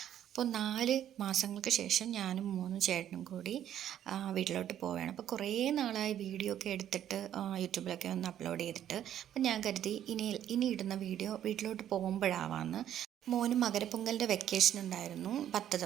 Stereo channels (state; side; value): quieter; left; 10.8 dB